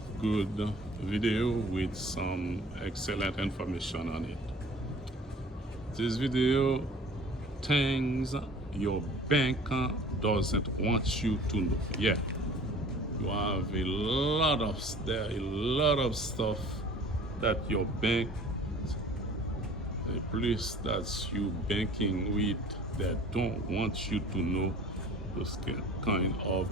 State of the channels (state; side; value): normal; both; correlation 0.47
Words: good video with some excellent information on it. This video, things your bank doesn't want you to know. Yeah, you have a lot of stuff that your bank, the place that you banking with, that don't want you to know those kind of